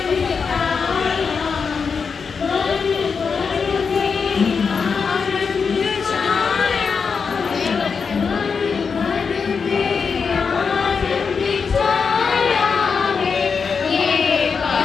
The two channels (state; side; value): quieter; right; 5.6 dB